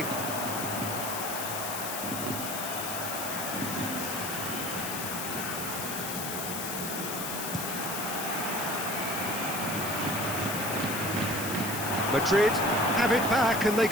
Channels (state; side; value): noise; left; hiss, 4 dB below the sound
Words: Madrid have it back and they